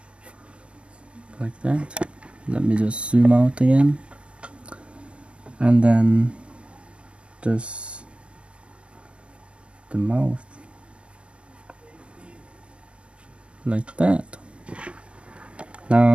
Like that. Let me just zoom out again, and then just the mouth like that.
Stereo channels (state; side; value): late; left; 0.060 ms